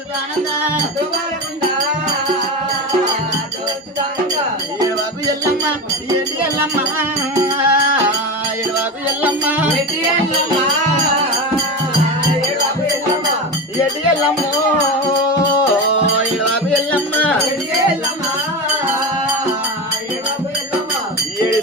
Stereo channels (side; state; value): both; normal; correlation 0.22